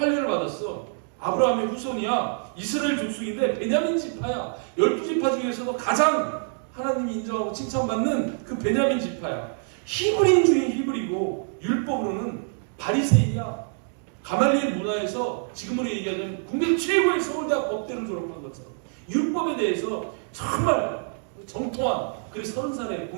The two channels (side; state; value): left; silent; 61 dB below the other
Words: 받았어. 아브라함의 후손이야. 이스라엘 족속인데 베냐민 지파야. 12지파 중에서도 가장 하나님이 인정하고 칭찬받는 그 베냐민 지파야. 히브리인 중에 히브리고 율법으로는 바리새인이야. 가말리엘 문화에서 지금으로 얘기하자면 국내 최고의 서울대학 법대를 졸업한 것처럼 율법에 대해서 정말 정통한, 그래서 30살에